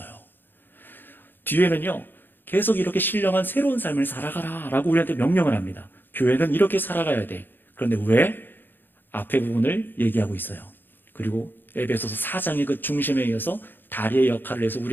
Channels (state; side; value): late; right; 0.095 ms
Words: 뒤에는요, 계속 이렇게 신령한 새로운 삶을 살아가라 라고 우리한테 명령을 합니다. 교회는 이렇게 살아가야 돼. 그런데 왜? 앞에 부분을 얘기하고 있어요. 그리고 에베소서 4장의 그 중심에 이어서 다리의 역할을 해서